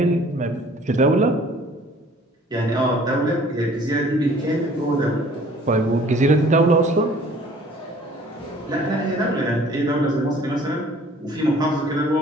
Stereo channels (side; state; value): both; normal; correlation 0.53